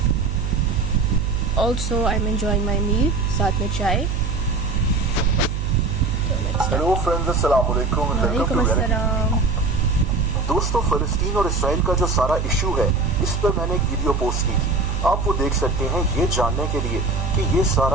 Also I am enjoying my meal, साथ में चाय। हेलो फ्रेंड्स, अस्सलाम वालेकुम, वेलकम टू रियलिटी। दोस्तों, फ़लस्तीन और इसराइल का जो सारा इशू है, इस पर मैंने एक वीडियो पोस्ट की थी। आप वो देख सकते हैं ये जानने के लिए कि ये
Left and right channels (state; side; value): noise; right; hum, 2 dB below the sound